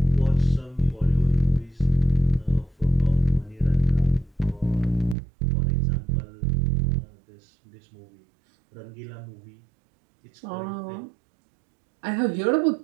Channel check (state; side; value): drops out; left; at 5.2 s